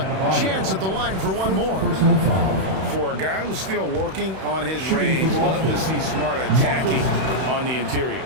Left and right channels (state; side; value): late; left; 31 ms